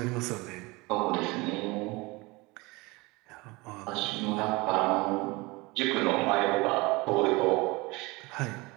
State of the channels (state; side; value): quieter; left; 24.1 dB